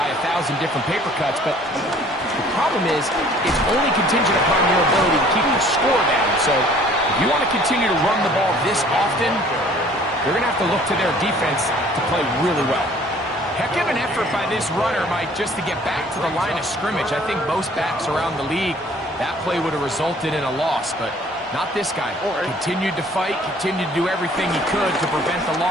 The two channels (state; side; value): normal; both; correlation 0.54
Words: 1,000 different paper cuts. But the problem is, it's only contingent upon your ability to keep the score down. So if you want to continue to run the ball this often, you're going to have to look to their defense to play really well. Heck of an effort by this runner, Mike, just to get back to the line of scrimmage. I think most backs around the league, that play would have resulted in a loss, but not this guy. Continued to fight, continued to do everything he could to prevent the